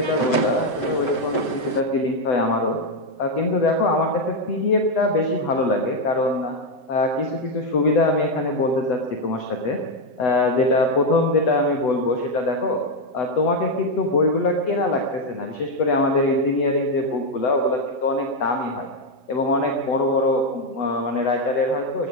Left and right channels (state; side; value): late; right; 7.7 ms